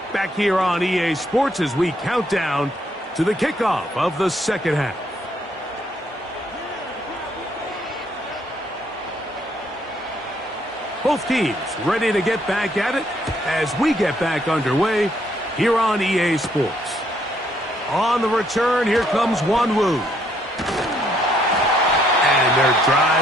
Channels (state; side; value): normal; both; correlation 0.69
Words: Back here on EA Sports as we count down to the kickoff of the second half. Both teams ready to get back at it as we get back underway here on EA Sports. On the return, here comes Wanwu. And their